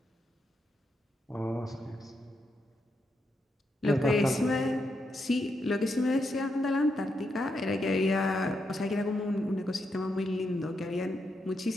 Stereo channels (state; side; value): normal; both; correlation 0.82